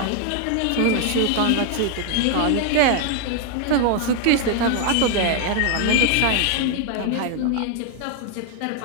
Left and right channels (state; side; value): different; both; correlation 0.01